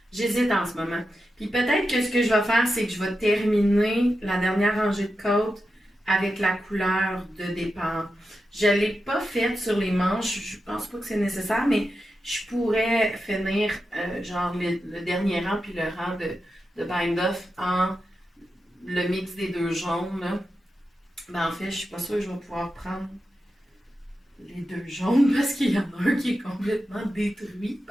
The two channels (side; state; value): both; normal; correlation 0.89